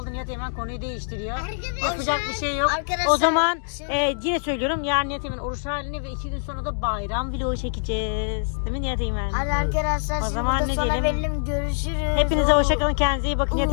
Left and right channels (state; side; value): silent; right; digital silence